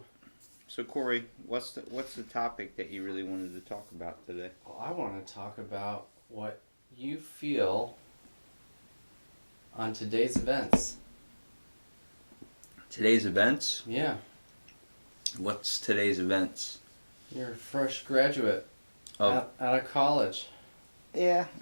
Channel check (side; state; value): both; inverted; correlation -1.00